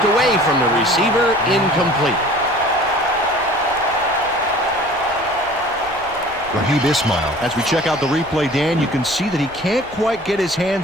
away from the receiver, incomplete. Raheem Ismail. As we check out the replay, Dan, you can see that he can't quite get his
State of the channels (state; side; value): noise; left; rumble, 21 dB below the sound